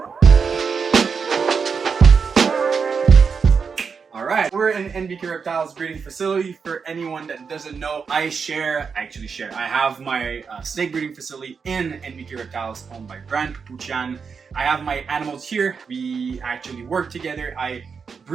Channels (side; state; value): left; quieter; 5.7 dB